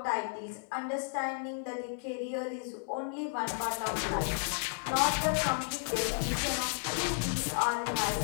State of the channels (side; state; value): right; silent; 56 dB below the other